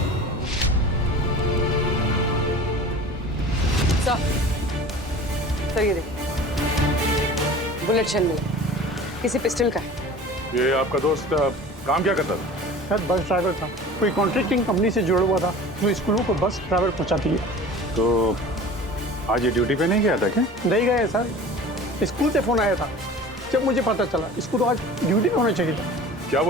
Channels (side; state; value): both; normal; correlation 0.40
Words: सर ये देखिए, बुलेट शेल मिला, किसी पिस्टल का है। ये आपका दोस्त काम क्या करता था? सर बस ड्राइवर था, कोई कॉन्ट्रैक्टिंग कंपनी से जुड़ा हुआ था जो स्कूलों को बस ड्राइवर पहुंचाती है। तो आज ये ड्यूटी पे नहीं गया था क्या? नहीं गए सर, स्कूल से फोन आया था, जब मुझे पता चला इसको तो आज ड्यूटी पे होना चाहिए था। क्या